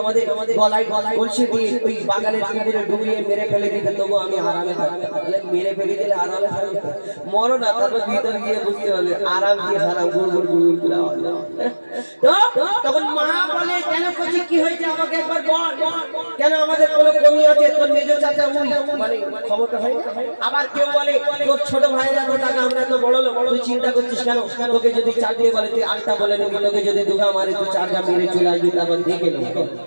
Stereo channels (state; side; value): inverted; both; correlation -1.00